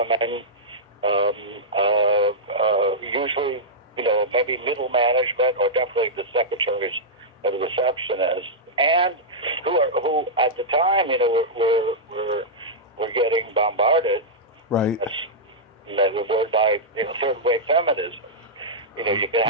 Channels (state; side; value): normal; both; correlation -0.09